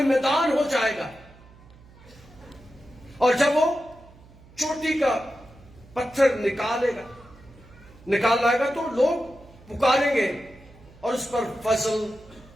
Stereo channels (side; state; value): right; noise; hum, 24 dB below the sound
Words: میدان ہو جائے گا، اور جب وہ چوٹی کا پتھر نکال لائے گا تو لوگ پکاریں گے اور اس پر